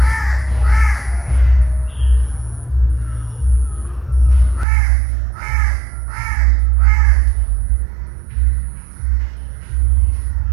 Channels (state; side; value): drops out; left; at 4.7 s